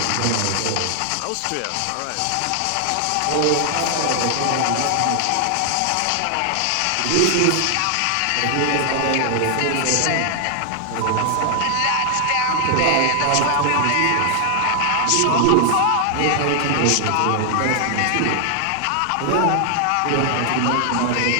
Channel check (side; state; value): both; different; correlation 0.00